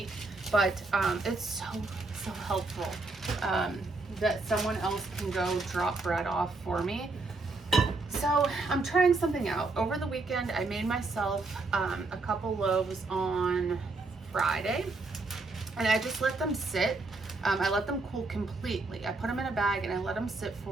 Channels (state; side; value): quieter; left; 3.5 dB